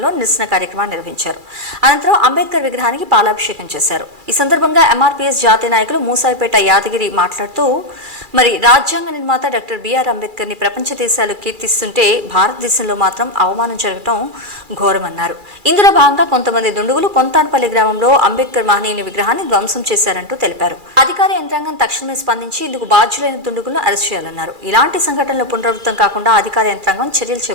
నిరసన కార్యక్రమాన్ని నిర్వహించారు. అనంతరం అంబేద్కర్ విగ్రహానికి పాలాభిషేకం చేశారు. ఈ సందర్భంగా ఎంఆర్పీఎస్ జాతీయ నాయకులు మూసాయిపేట యాదగిరి మాట్లాడుతూ రాజ్యాంగ నిర్మాత డాక్టర్ బిఆర్ అంబేద్కర్ ని ప్రపంచ దేశాలు కీర్తిస్తుంటే భారతదేశంలో మాత్రం అవమానం జరగడం ఘోరమన్నారు. ఇందులో భాగంగా కొంతమంది దుండగులు కొంతాన్పల్లి గ్రామంలో అంబేద్కర్ మహనీయుని విగ్రహాన్ని ధ్వంసం చేశారంటూ తెలిపారు. అధికార యంత్రాంగం తక్షణమే స్పందించి ఇందుకు బాధ్యులైన దుండగులను అరెస్ట్ చేయాలన్నారు. ఇలాంటి సంఘటనలు పునరావృతం కాకుండా అధికార యంత్రాంగం చర్యలు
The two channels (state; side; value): late; left; 2.4 ms